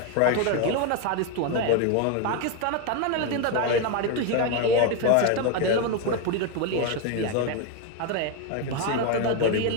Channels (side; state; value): both; different; correlation 0.02